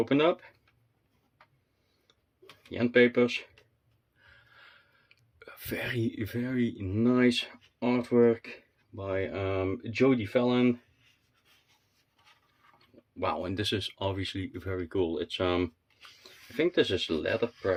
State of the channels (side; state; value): both; identical; correlation 1.00